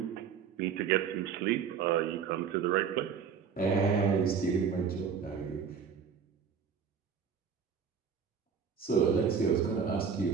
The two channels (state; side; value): quieter; left; 6.7 dB